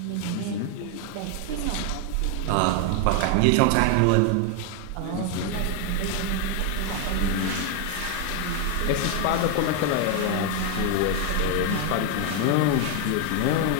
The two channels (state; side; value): different; both; correlation 0.00